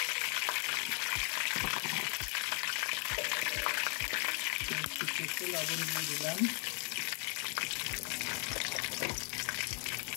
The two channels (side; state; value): right; quieter; 36.7 dB